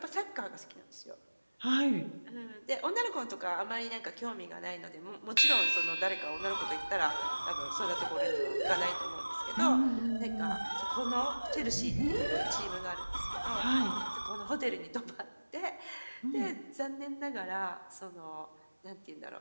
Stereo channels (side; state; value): both; inverted; correlation -1.00